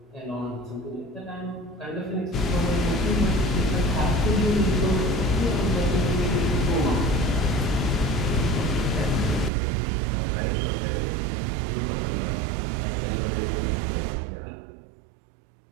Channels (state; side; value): drops out; left; at 9.5 s